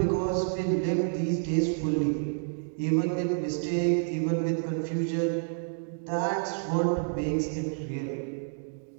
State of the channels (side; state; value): left; silent; digital silence